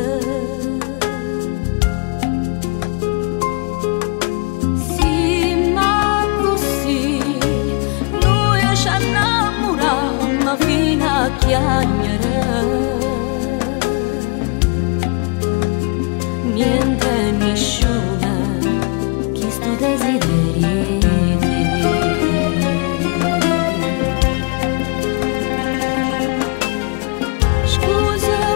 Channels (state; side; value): quieter; right; 32.5 dB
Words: sì, ma così noi ci innamorammo fino a chiagnere. Niente nessuna chi stu desideri te.